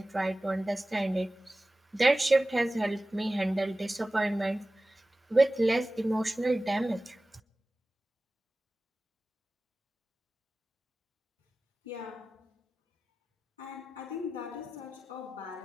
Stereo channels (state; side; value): normal; both; correlation 0.96